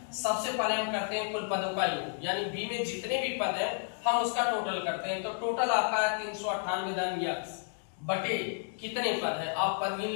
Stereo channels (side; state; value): right; silent; 55 dB below the other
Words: सबसे पहले हम करते हैं कुल पदों का योग, यानी बी में जितने भी पद हैं हम उसका टोटल करते हैं। तो टोटल आपका है 398 धन यक्स बटे कितने पद है, आप पद गिन